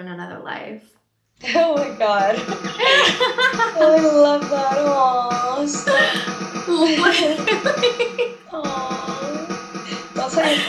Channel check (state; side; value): identical; both; correlation 1.00